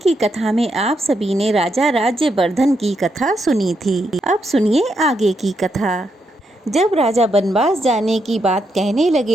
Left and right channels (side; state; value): both; normal; correlation 0.80